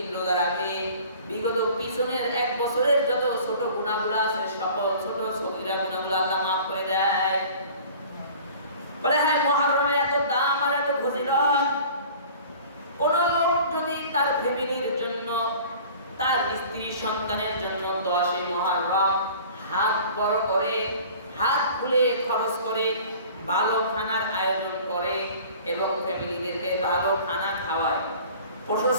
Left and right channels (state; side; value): inverted; both; correlation -0.45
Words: রোজা রাখে, বিগত পিছনের 1 বছরের যত ছোট গুনাহগুলো আছে, সকল ছোট সগীরা গুনাহগুলো আল্লাহ মাফ করে দেয়। বলে হ্যাঁ, মুহররমের এত দাম আর এত ফজিলত, কোন লোক যদি তার ফ্যামিলির জন্য, তার স্ত্রী সন্তানের জন্য 10 মুহররম হাত বড় করে, হাত খুলে খরচ করে, ভালো খানার আয়োজন করে এবং ফ্যামিলিদেরকে ভালো খানা খাওয়ায়,